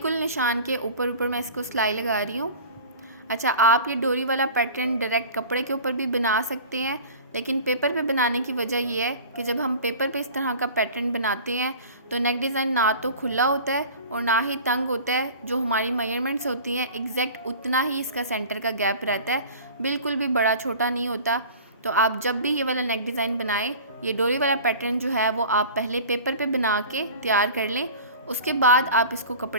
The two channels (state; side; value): inverted; both; correlation -0.40